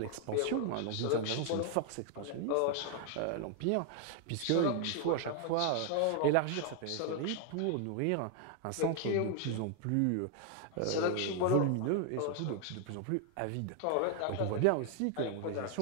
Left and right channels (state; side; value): different; both; correlation 0.00